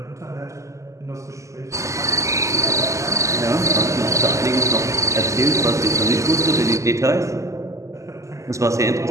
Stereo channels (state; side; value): late; left; 0.15 ms